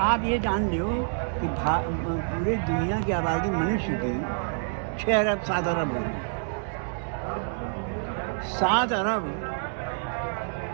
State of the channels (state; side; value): silent; left; digital silence